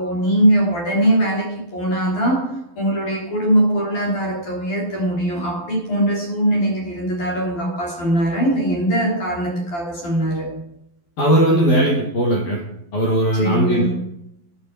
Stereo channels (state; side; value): late; right; 12 ms